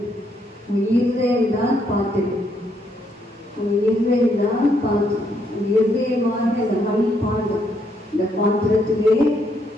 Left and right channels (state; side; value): normal; both; correlation 0.74